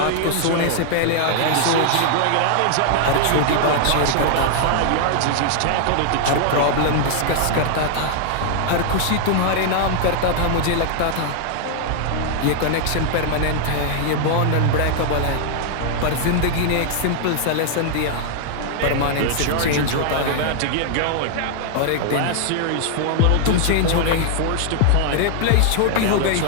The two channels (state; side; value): different; both; correlation 0.00